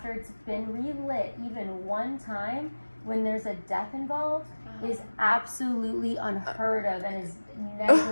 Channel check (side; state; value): both; inverted; correlation -1.00